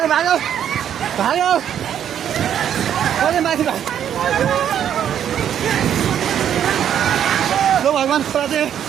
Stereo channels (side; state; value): left; quieter; 9.6 dB